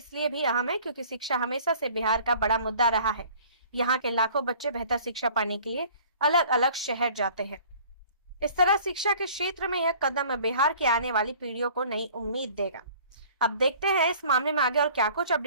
भी अहम है क्योंकि शिक्षा हमेशा से बिहार का बड़ा मुद्दा रहा है। यहाँ के लाखों बच्चे बेहतर शिक्षा पाने के लिए अलग अलग शहर जाते हैं। इस तरह शिक्षा के क्षेत्र में यह कदम बिहार की आने वाली पीढ़ियों को नई उम्मीद देगा। अब देखते हैं इस मामले में आगे और क्या कुछ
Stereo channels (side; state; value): both; inverted; correlation -0.50